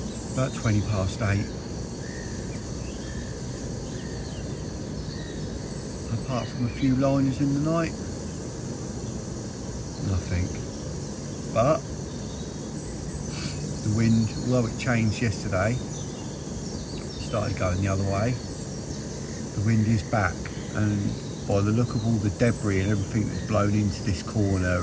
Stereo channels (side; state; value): both; identical; correlation 1.00